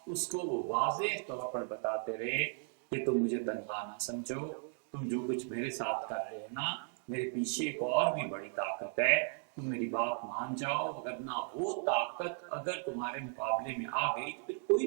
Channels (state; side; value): silent; left; 54 dB below the other